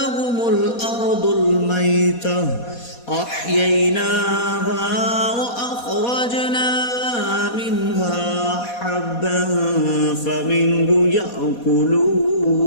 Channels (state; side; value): late; right; 4.2 ms